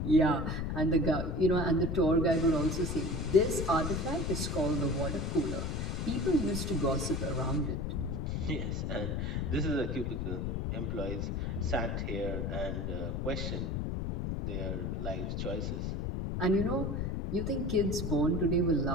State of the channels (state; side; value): noise; left; rumble, 1 dB below the sound